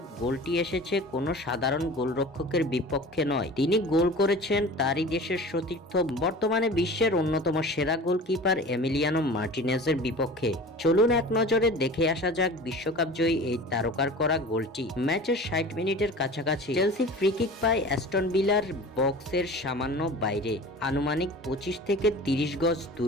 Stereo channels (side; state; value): both; normal; correlation 0.38